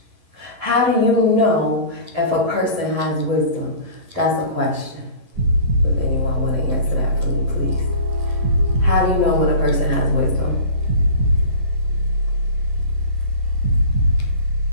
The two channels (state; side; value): late; left; 11 ms